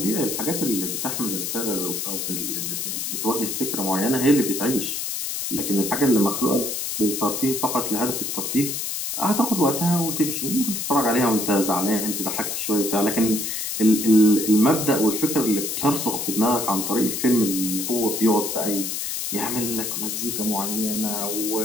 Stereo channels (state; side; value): noise; left; hiss, 3 dB below the sound